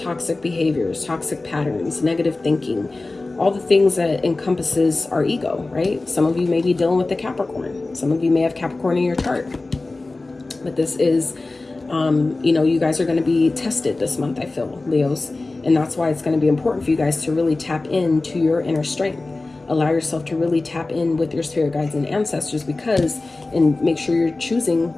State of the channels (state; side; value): quieter; right; 3.2 dB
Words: behaviors, toxic patterns, negative thinking, all the things that encompasses our ego, right? Some of you may be dealing with the Capricorn. Some of you may have Capricorn in your chart. But this is, you guys are going to be tested this month, I feel, Leos. And that's why it's going to be important for you guys to really tap into your inner strength. Allow yourself to really tap in with your spirit guides and ancestors, and make sure you're choosing,